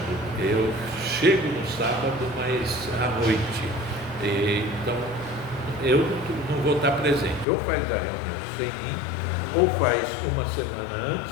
Eu chego no sábado, mas à noite. Então, eu não vou estar presente. Ou faz a reunião sem mim, ou faz uma semana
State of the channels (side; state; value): right; drops out; at 7.5 s